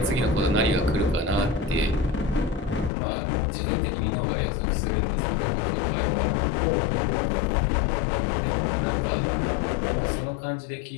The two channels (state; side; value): drops out; right; at 2.9 s